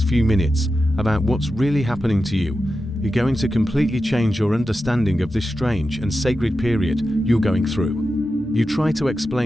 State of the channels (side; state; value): both; normal; correlation 0.91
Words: few minutes about what's really happening to you is going to completely change your understanding of this strange and sacred period you're going through. You try to